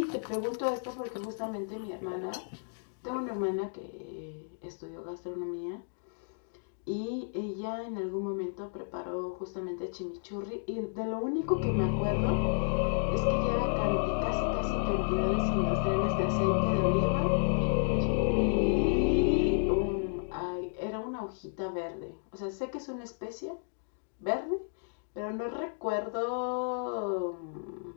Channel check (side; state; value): right; silent; digital silence